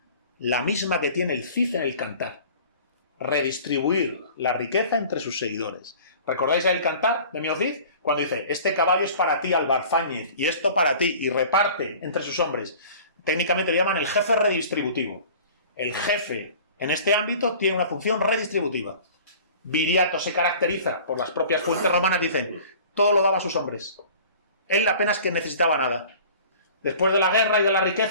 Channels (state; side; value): inverted; both; correlation -0.45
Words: La misma que tiene el Cid en el Cantar. Redistribuir la riqueza entre sus seguidores. ¿Recordáis el Cantar de Mio Cid? Cuando dice, este caballo es para ti, Albarzáñez, y esto para ti, y reparte entre sus hombres. Técnicamente le llaman el jefe redistributivo. El jefe, en este ámbito, tiene una función redistributiva. Viriato se caracteriza, por las propias fuentes romanas, dicen, todo lo daba a sus hombres. Él apenas que necesitaba nada. Después de la guerra y de la